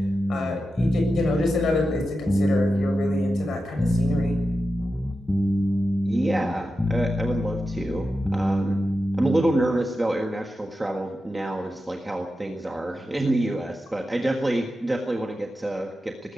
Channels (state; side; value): normal; both; correlation 0.91